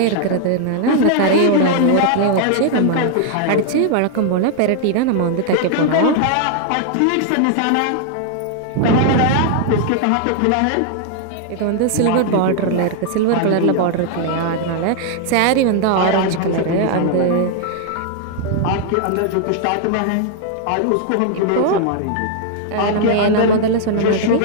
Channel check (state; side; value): different; both; correlation 0.00